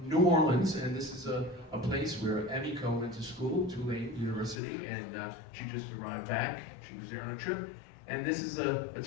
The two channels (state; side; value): drops out; right; at 4.5 s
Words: New Orleans, and this is a place where Emiko went to school, Tulane University, and she just arrived back. She was there on a trip. And this is a